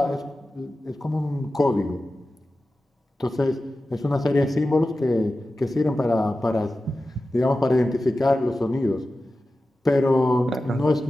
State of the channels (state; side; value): normal; both; correlation 0.94